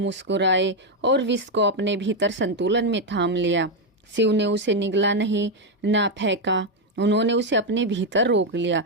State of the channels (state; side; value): normal; both; correlation 0.04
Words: और विष को अपने भीतर संतुलन में थाम लिया। शिव ने उसे निगला नहीं, ना फेंका। उन्होंने उसे अपने भीतर रोक लिया,